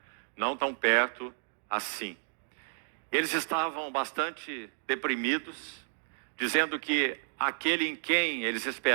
não tão perto assim. Eles estavam bastante deprimidos, dizendo que aquele em quem eles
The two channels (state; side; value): silent; left; digital silence